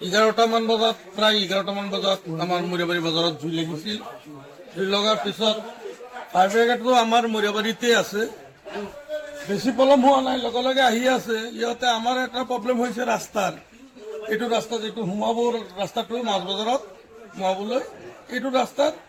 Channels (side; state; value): both; identical; correlation 1.00